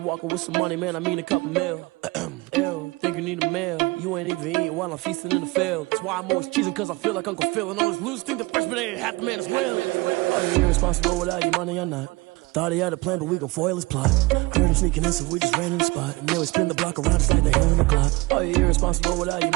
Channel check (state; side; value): quieter; left; 23.2 dB